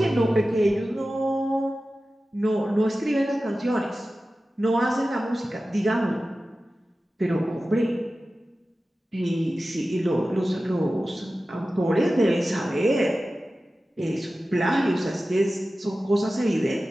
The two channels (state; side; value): normal; both; correlation 0.95